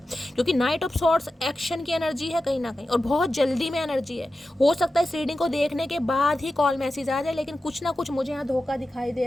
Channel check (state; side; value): normal; both; correlation 0.93